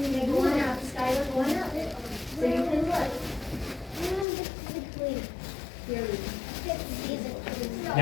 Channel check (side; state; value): right; drops out; at 4.2 s